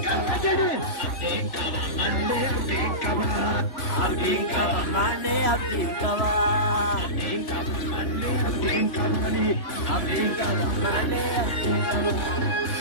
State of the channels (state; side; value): late; right; 3.5 ms